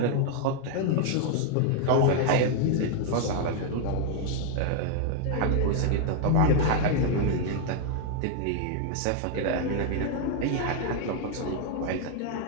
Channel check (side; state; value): both; different; correlation 0.00